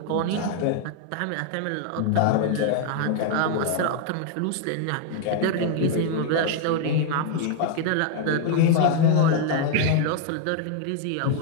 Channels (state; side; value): different; both; correlation 0.00